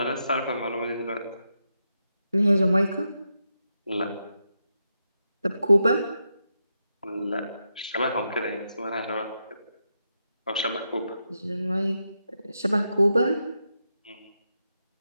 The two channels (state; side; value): inverted; both; correlation -0.85